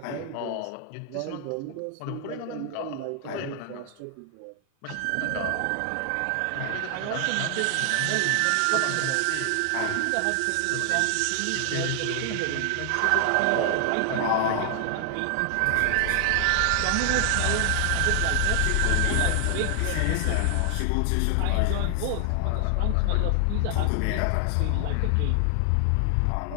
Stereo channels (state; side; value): different; both; correlation 0.00